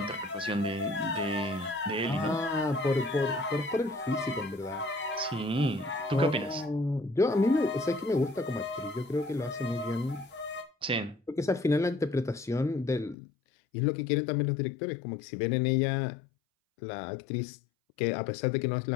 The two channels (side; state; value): right; drops out; at 13.2 s